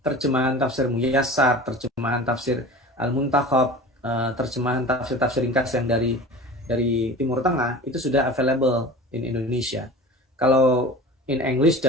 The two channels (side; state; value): both; normal; correlation 0.37